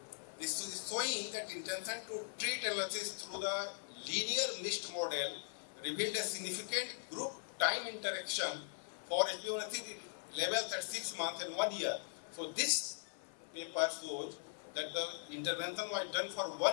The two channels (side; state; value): right; silent; 51 dB below the other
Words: This is showing that intention to treat analysis through the linear mixed model revealed a significant group time interaction for HbA1c levels at 6 months and 1 year. So this paper shows that the intervention was done for